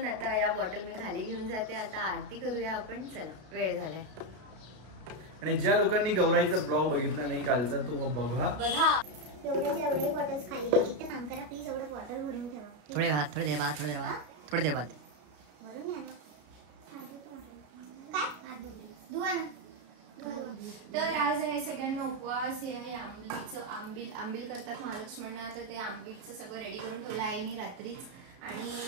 आता या बॉटल मी खाली घेऊन जाते. आता आरती करूया आपण. चला वेळ झालाय. आणि ज्या लोकांनी गौराईचा ब्लॉग बघितला नाही कालचा तो बघा. एवढे बॉटल्स खाली एक काम करा प्लीज. एवढं बॉटल भरून ठेवा. थोडे देर बाद भरून घ्या ना. काय धुवा ना. तर आज आहे सगळ्यांना उपवास. हे आहे आंबील करतात महालक्ष्मींना. तर ते आंबीलचं सगळं रेडी करून ठेवलं आईनी रात्रीच. आणि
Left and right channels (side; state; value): left; late; 33 ms